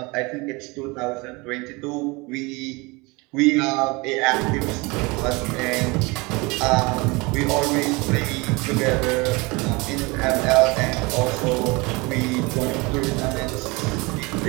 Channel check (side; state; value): left; quieter; 25.7 dB